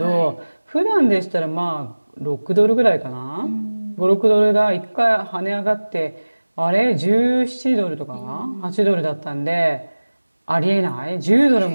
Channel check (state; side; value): inverted; both; correlation -1.00